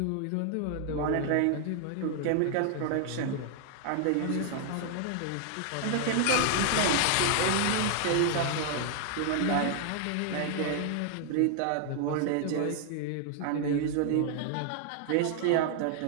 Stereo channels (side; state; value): both; different; correlation 0.00